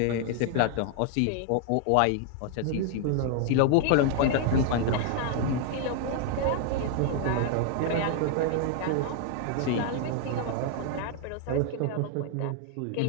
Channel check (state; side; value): different; both; correlation 0.00